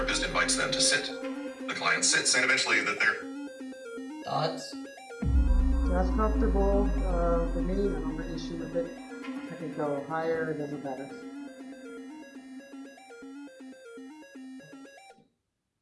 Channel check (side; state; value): both; identical; correlation 1.00